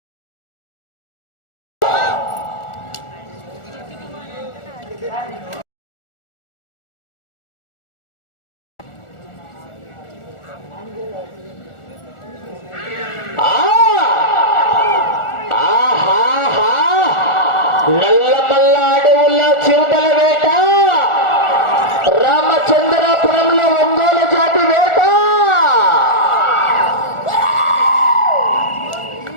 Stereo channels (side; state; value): right; late; 1.4 ms